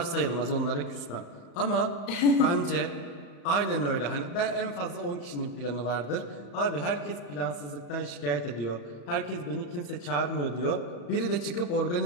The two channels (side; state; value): right; late; 35 ms